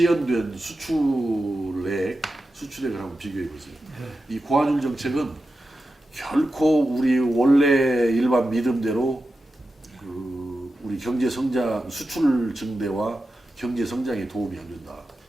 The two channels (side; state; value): both; normal; correlation 0.91